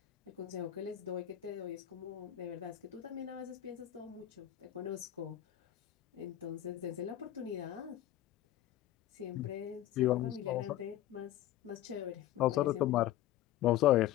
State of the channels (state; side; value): quieter; right; 13.3 dB